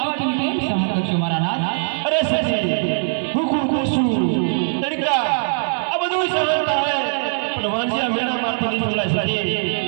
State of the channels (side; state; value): left; silent; 65 dB below the other